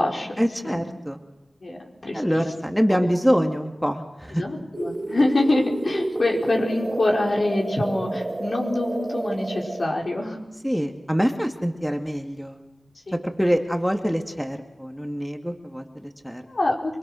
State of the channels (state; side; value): normal; both; correlation 0.97